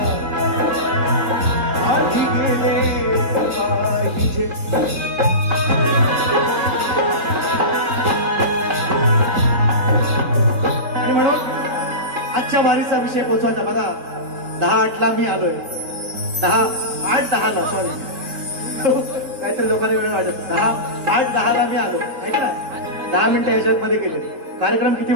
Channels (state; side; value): late; left; 4.0 ms